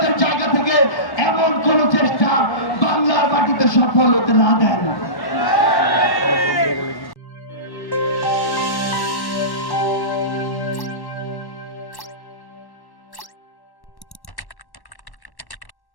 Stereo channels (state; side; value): late; right; 1.1 ms